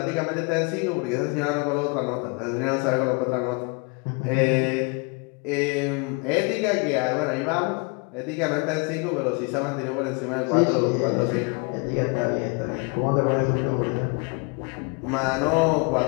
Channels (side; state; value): right; quieter; 31.7 dB